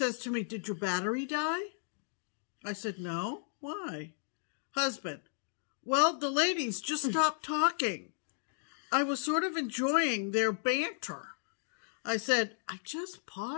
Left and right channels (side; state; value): right; silent; digital silence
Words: to me, did your battery die? I said, no. Why? Husband. Well, the ladies just stopped talking. I was sort of enjoying their banter. I said, I just